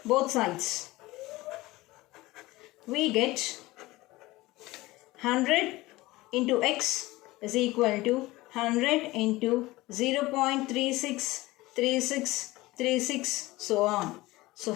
both sides, we get 100 into x is equal to 100 into 0.363636, so on. So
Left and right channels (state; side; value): quieter; right; 19.6 dB